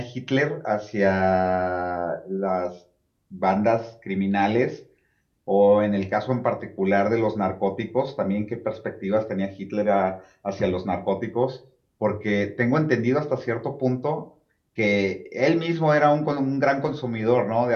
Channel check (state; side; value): identical; both; correlation 1.00